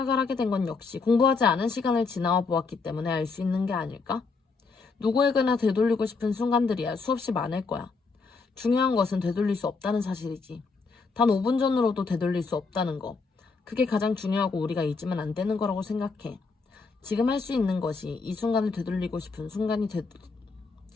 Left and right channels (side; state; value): right; quieter; 4.4 dB